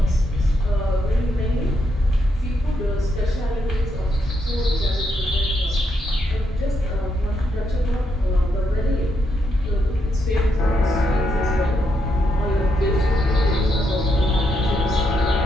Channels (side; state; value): both; normal; correlation 0.80